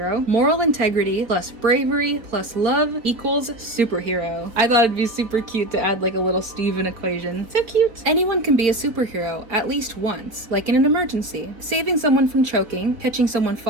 moral integrity plus bravery plus love equals superhero. I thought it'd be super cute to add like a little Steven equation. So cute. Anyone can be a superhero at least once, like in an emergency. Saving someone from choking, catching someone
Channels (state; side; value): late; left; 3.8 ms